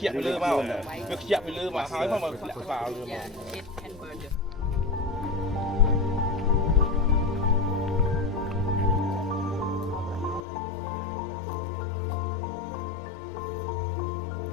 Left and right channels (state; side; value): drops out; right; at 10.4 s